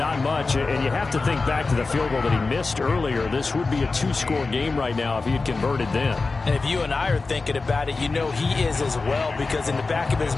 much. And you have to think back to the field goal that he missed earlier. This would be a two-score game right now if he had converted then. And if you and I are thinking about it, you know he is as well, because in the back of his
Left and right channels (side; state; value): right; quieter; 3.9 dB